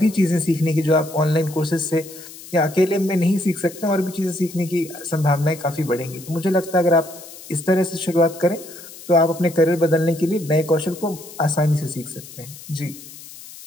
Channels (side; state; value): left; noise; hiss, 16 dB below the sound